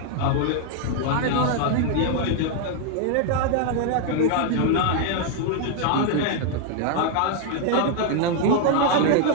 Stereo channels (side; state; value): both; different; correlation 0.00